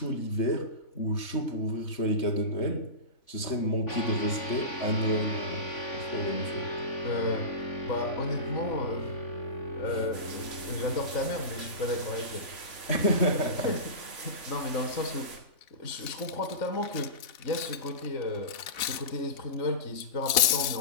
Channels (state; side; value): late; right; 3.5 ms